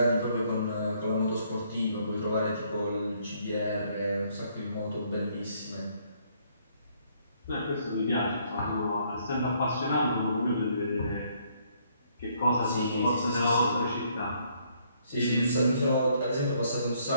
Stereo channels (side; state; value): both; inverted; correlation -0.68